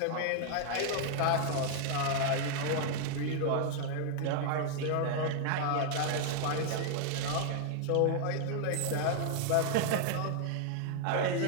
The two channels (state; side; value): different; both; correlation 0.00